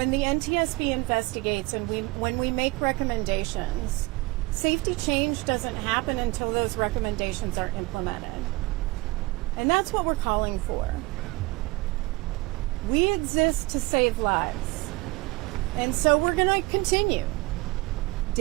the NTSB investigates and when we make recommendations, safety change doesn't happen until those recommendations are implemented. And that's what we're calling for. We exist to save lives. And so we're going to continue.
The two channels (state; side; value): quieter; left; 22.3 dB